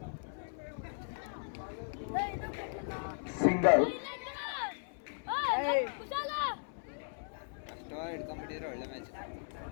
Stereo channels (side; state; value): right; silent; 53 dB below the other